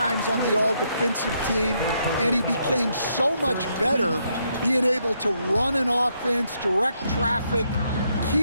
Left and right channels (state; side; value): inverted; both; correlation -0.76